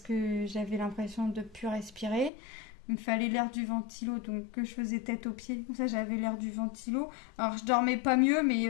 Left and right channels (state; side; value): drops out; right; at 2.3 s